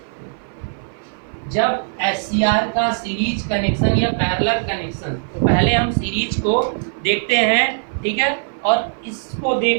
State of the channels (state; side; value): silent; left; 57 dB below the other